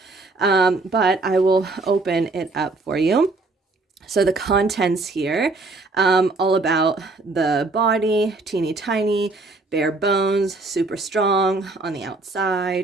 But I will open it up for you. So the contents here, all about the body, teeny tiny, bare bones, super strong on the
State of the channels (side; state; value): left; quieter; 3.4 dB